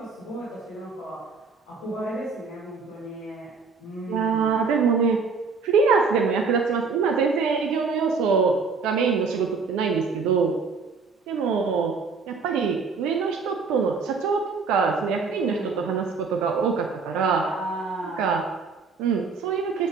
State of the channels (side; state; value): left; quieter; 4.8 dB